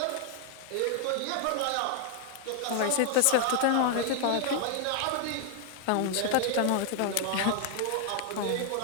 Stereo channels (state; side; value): different; both; correlation 0.00